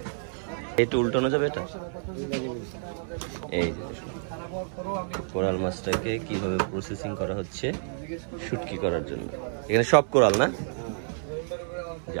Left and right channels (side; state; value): left; silent; 59 dB below the other